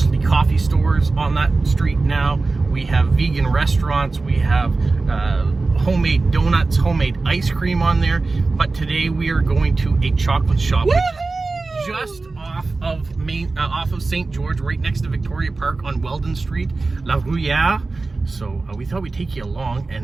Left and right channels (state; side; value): quieter; left; 3.6 dB